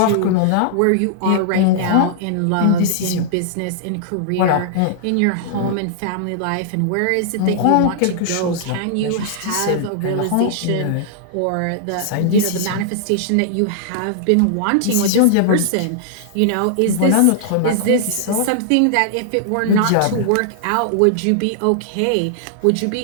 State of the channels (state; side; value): different; both; correlation -0.01